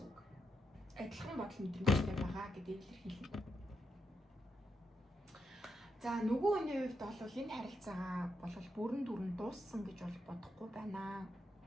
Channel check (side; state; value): both; normal; correlation 0.83